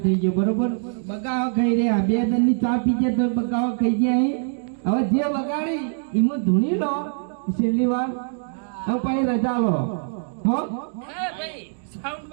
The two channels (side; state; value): left; silent; digital silence